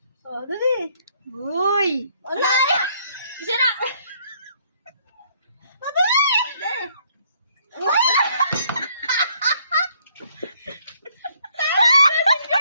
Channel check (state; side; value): inverted; both; correlation -0.67